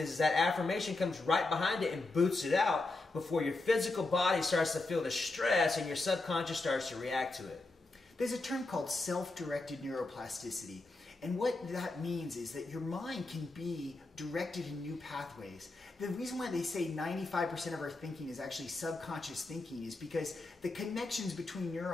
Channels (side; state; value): right; quieter; 3.2 dB